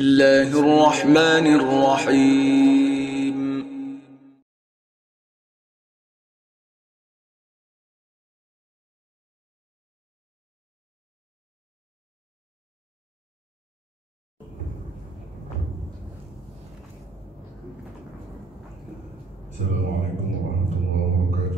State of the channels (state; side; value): normal; both; correlation 0.94